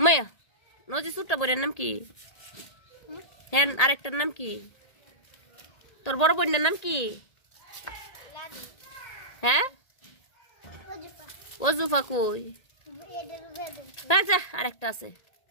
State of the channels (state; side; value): late; right; 1.8 ms